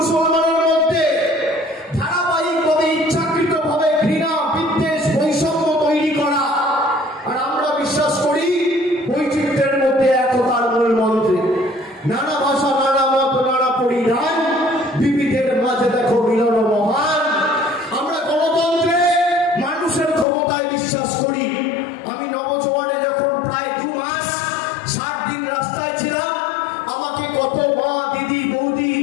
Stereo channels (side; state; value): right; drops out; at 20.2 s